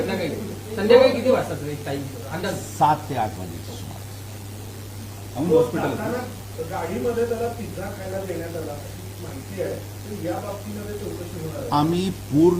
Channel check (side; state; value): both; identical; correlation 1.00